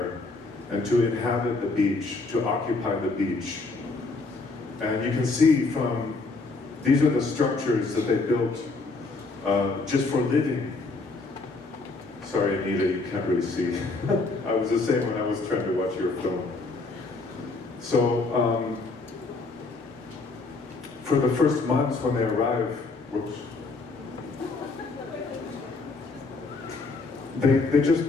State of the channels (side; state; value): right; quieter; 3.7 dB